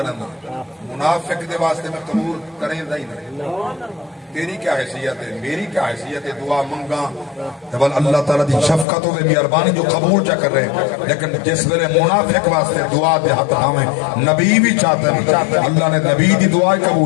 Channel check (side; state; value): right; drops out; at 8.8 s